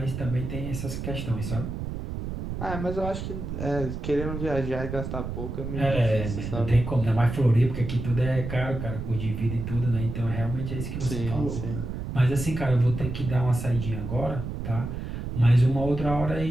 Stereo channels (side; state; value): right; noise; rumble, 6 dB below the sound